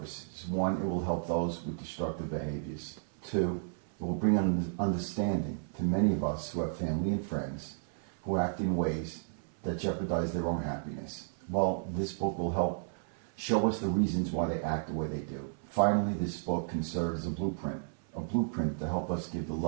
One, it will help those with destructive behaviors. Two, it will bring understanding to many of us who have family and friends who act in ways that jeopardize their own happiness. Well, this book will help show us the reasons why they act the way they do. Finally, this book can serve as a blueprint to help us give the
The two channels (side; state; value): left; silent; 56 dB below the other